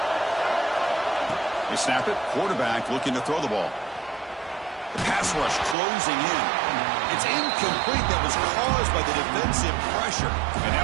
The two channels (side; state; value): left; drops out; at 5.8 s